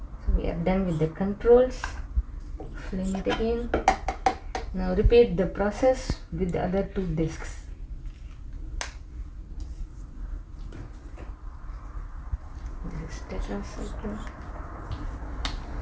So we are done with the controls. Flame it again. Now repeat the process with the other two discs. This is tetracycline.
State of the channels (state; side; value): identical; both; correlation 1.00